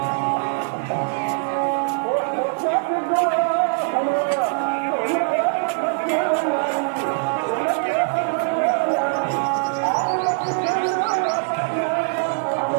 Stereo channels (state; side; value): silent; left; 64 dB below the other